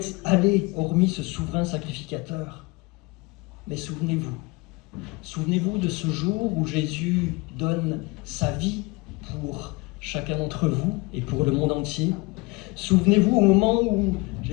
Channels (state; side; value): quieter; right; 25.2 dB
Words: aller hormis ce souverain sacrificateur. Mais souvenez-vous de ce jour où Jésus donne sa vie pour chacun d'entre vous et pour le monde entier. Souvenez-vous au moment où